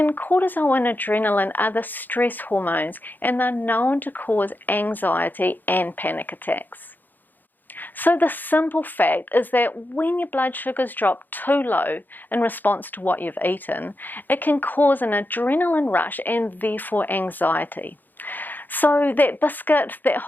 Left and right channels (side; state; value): right; late; 0.088 ms